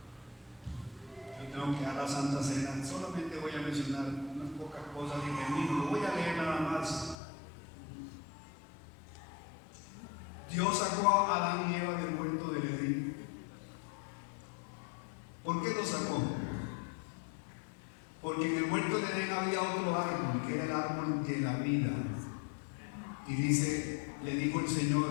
había otro árbol, que era el árbol de la vida. Y dice, le dijo el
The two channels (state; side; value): drops out; right; at 7.2 s